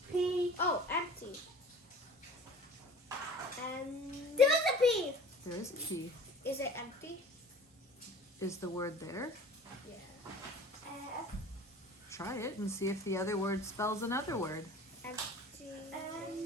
P. Oh, empty. And there's a P. There is a P. Is it empty? Is the word there? Yeah. Try it and see if the other word spells another word. Empty.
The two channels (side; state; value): both; normal; correlation 0.43